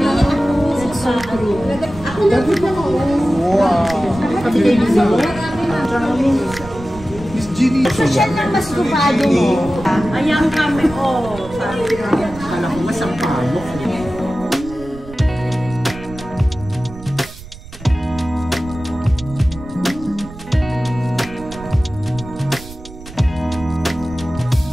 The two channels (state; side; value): noise; right; rumble, 16 dB below the sound